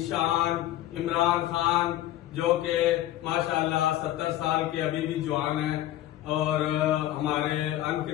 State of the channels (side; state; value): right; quieter; 14.0 dB